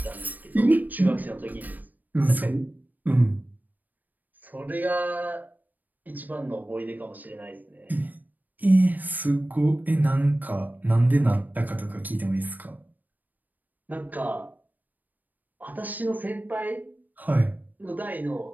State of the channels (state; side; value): late; left; 0.085 ms